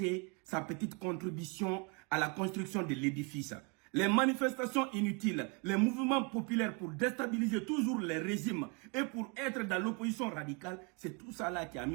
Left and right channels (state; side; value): quieter; left; 33.1 dB